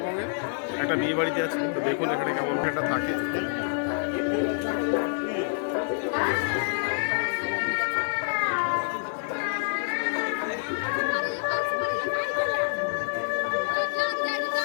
একটা বিয়ে বাড়িতে আছি। তো দেখুন এখানে কেমন একটা থাকে।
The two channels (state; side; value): silent; right; 60 dB below the other